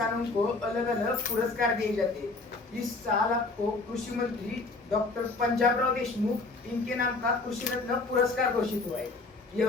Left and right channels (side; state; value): right; quieter; 3.6 dB